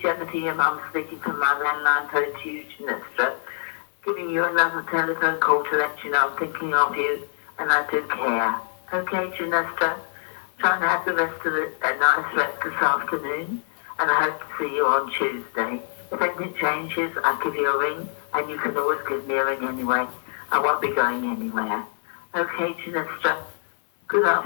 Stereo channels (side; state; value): right; silent; digital silence